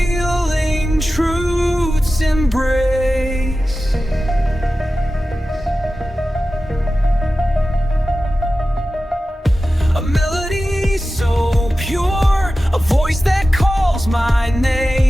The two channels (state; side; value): normal; both; correlation 0.94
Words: truth's embrace. A melody so pure, a voice that calls my